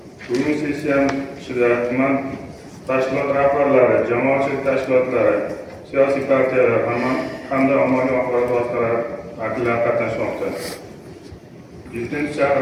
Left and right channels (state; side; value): identical; both; correlation 1.00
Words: Bugun sessiyamiz ichida tuman tashkilot rahbarlari, jamoatchilik tashkilotlari, siyosiy partiyalar hamda ommaviy axborot vositalari vakillari qatnashmoqda.